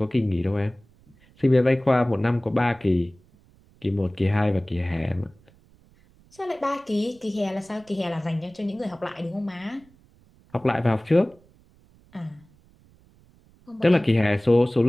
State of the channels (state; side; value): noise; right; rumble, 30 dB below the sound